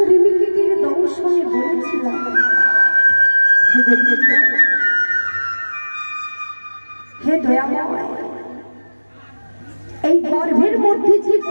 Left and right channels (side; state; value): both; inverted; correlation -1.00